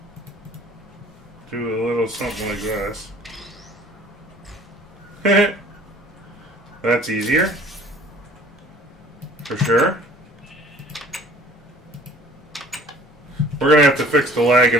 do a little something like this? That's easier. For sure. We're going to have to fix the lag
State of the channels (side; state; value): both; normal; correlation 0.51